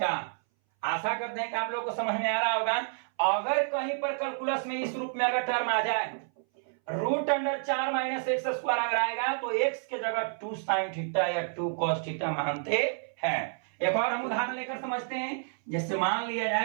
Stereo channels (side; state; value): left; silent; 58 dB below the other